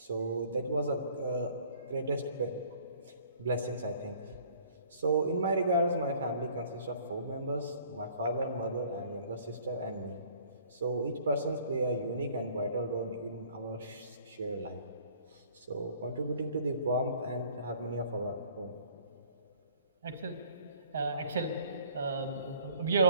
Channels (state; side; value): inverted; both; correlation -0.55